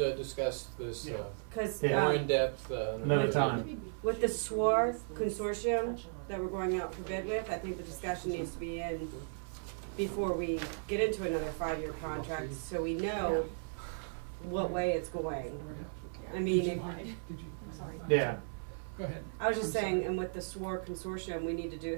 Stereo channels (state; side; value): silent; left; 54 dB below the other